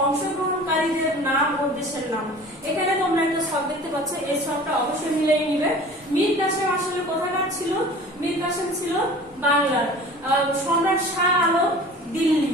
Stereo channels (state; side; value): normal; both; correlation 0.42